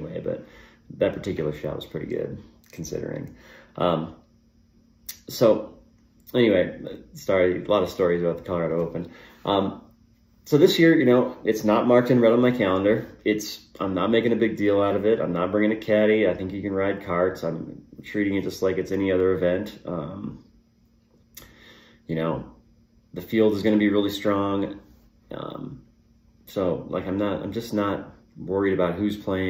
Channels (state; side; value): identical; both; correlation 1.00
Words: But that particular shot was pretty good considering. So anyway, a lot of stories about the Colorado Open. So this year, you know, it's not marked in red on my calendar. I'm not making a big deal out of it. I'm not bringing a caddy. I think you can ride carts. I'm treating it just like it's any other event. You know, the field is going to be really strong. So like, I'm just not worried about who's